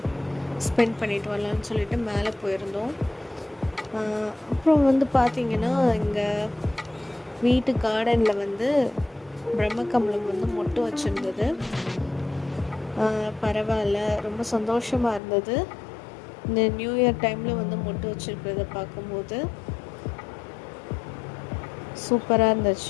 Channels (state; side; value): drops out; right; at 15.2 s